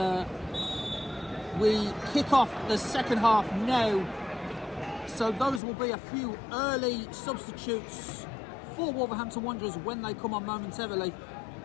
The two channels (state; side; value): drops out; right; at 5.6 s